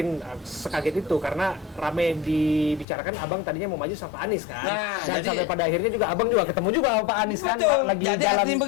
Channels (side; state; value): right; drops out; at 2.9 s